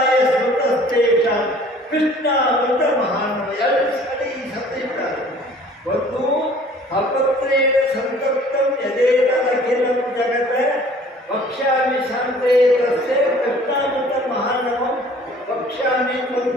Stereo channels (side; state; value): both; normal; correlation 0.52